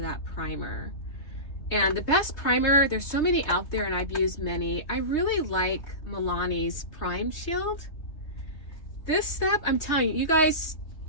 that primer. And the best primer, there's so many out there and I've used many. I really like Milani's Prime Shield. This stuff, I'm telling you, you guys,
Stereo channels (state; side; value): late; right; 3.2 ms